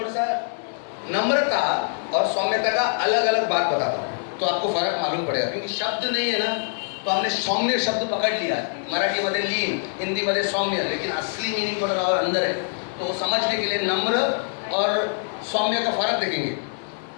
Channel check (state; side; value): silent; right; 63 dB below the other